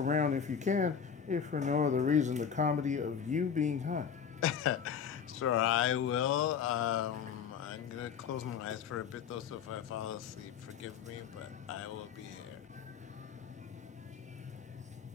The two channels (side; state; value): right; quieter; 7.2 dB